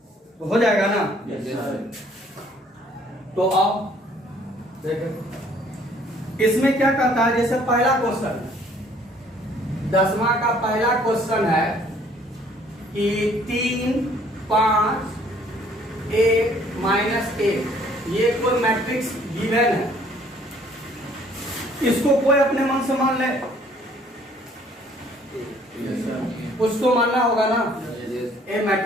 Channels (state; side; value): normal; both; correlation 0.60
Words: तो हो जाएगा ना? तो अब देखो इसमें क्या कहता है, जैसे पहला क्वेश्चन 10वां का पहला क्वेश्चन है कि 3, 5, 1 -1 ये कोई मैट्रिक्स गिवन है, इसको कोई अपने मन से मान ले, उसको मानना होगा ना, ए